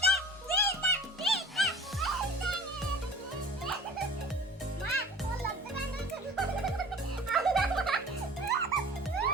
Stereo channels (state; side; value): normal; both; correlation 0.43